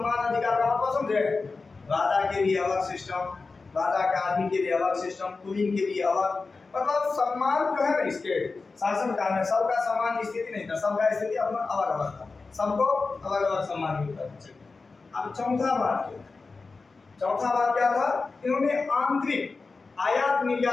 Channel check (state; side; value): quieter; right; 4.1 dB